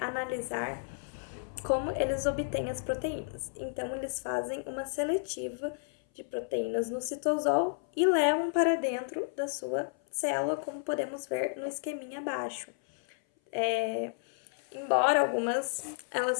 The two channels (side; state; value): right; silent; 56 dB below the other